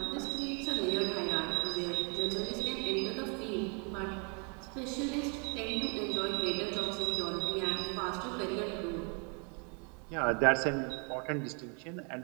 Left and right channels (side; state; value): left; quieter; 36.7 dB